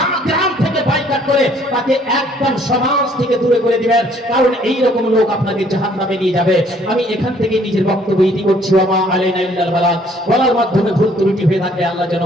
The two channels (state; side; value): normal; both; correlation 0.61